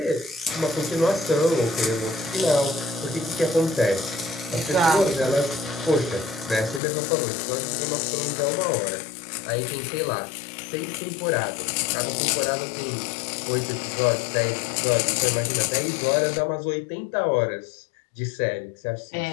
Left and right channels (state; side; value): drops out; right; at 6.8 s